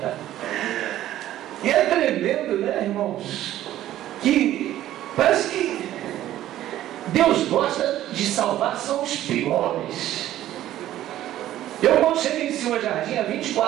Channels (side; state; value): left; quieter; 13.3 dB